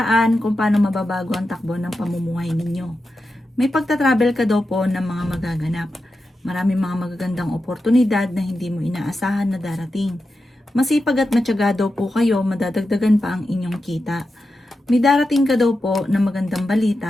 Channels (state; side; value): normal; both; correlation 0.90